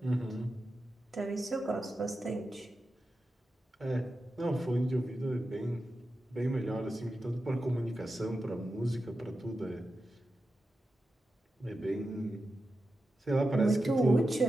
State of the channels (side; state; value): both; normal; correlation 0.90